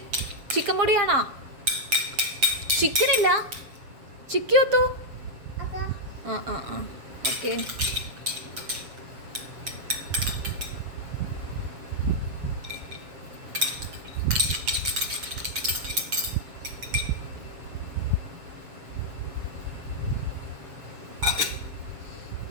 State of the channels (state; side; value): late; left; 7.2 ms